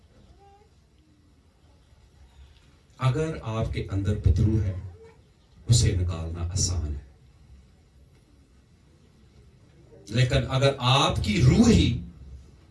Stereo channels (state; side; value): identical; both; correlation 1.00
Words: اگر آپ کے اندر بدرو ہے اسے نکالنا آسان ہے, لیکن اگر آپ کی روح ہی